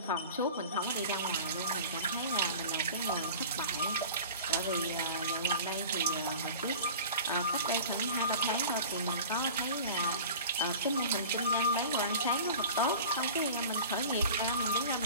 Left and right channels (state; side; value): inverted; both; correlation -0.39